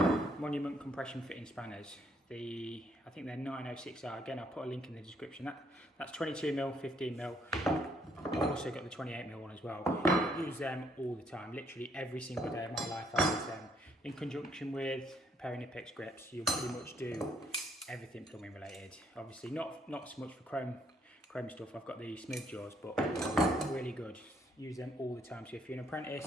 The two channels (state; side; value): normal; both; correlation 0.69